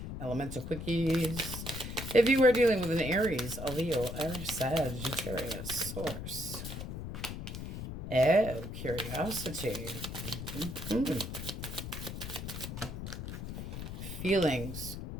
Elemental Quickies. If you are dealing with an Aries, a Leo, a Sagittarius, Source. Oh, curiosity. Feelings.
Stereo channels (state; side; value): noise; left; rumble, 7 dB below the sound